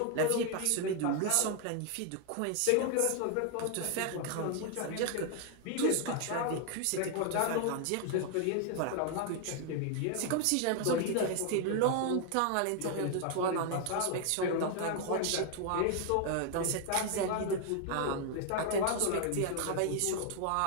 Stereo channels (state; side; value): different; both; correlation 0.00